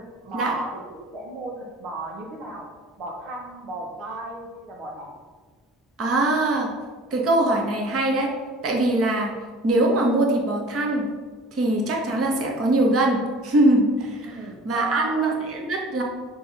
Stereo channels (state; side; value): normal; both; correlation 0.46